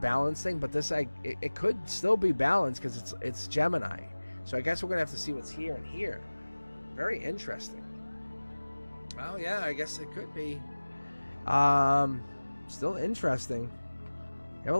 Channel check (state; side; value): inverted; both; correlation -1.00